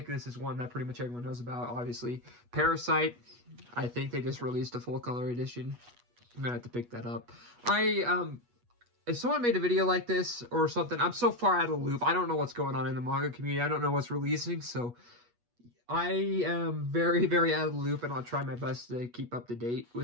this is one that pretty much everyone knows about, obviously. Parasite. I think they just released a full color edition. I'm gonna have to pick that up. If someone made a video like this or something, I'm so far out of the loop. I don't know what's going on in the manga community. I don't know what's releasing, so I am very, very out of the loop, and I'll try my best to keep up to date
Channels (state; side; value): late; left; 8.3 ms